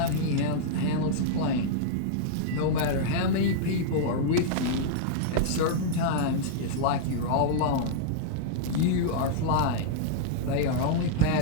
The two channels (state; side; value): different; both; correlation -0.02